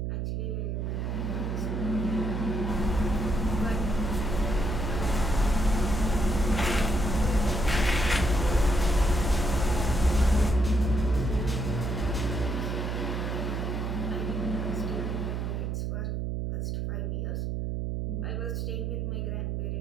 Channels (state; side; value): noise; right; hum, 1 dB below the sound